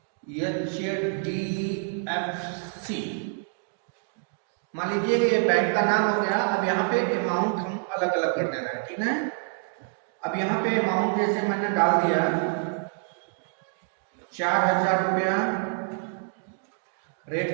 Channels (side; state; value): left; silent; 60 dB below the other